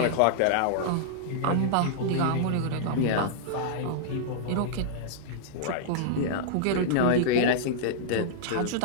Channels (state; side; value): different; both; correlation -0.02